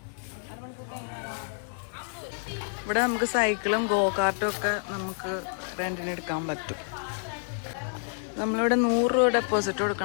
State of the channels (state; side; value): silent; right; digital silence